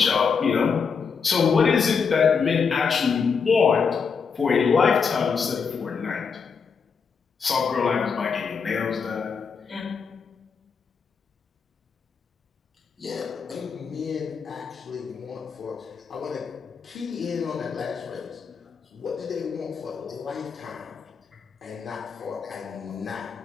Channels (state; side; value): quieter; right; 5.8 dB